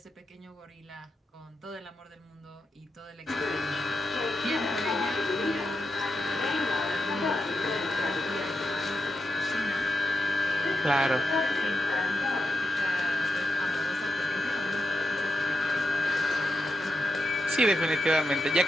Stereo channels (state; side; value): normal; both; correlation 0.87